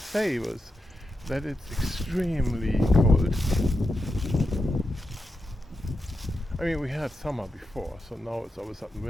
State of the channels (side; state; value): both; normal; correlation 0.87